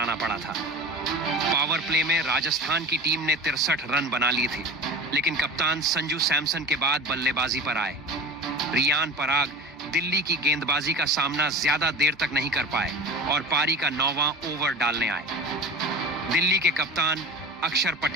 पड़ा था। पावर प्ले में राजस्थान की टीम ने 63 रन बना लिए थे, लेकिन कप्तान संजू सैमसन के बाद बल्लेबाजी पर आए रियान पराग दिल्ली की गेंदबाजी का सामना ज्यादा देर तक नहीं कर पाए और पारी का 9वां ओवर डालने आए। दिल्ली के कप्तान अक्षर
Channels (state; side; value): normal; both; correlation 0.32